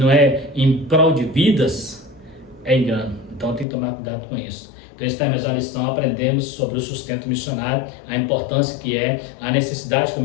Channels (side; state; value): right; drops out; at 3.7 s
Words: é em prol de vidas, é engano. Então, tem que tomar cuidado com isso. Então, esta é a mesma lição, aprendemos sobre o sustento missionário, a importância que é, a necessidade que o